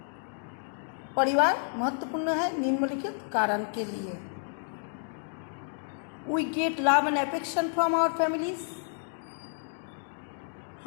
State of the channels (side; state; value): right; silent; digital silence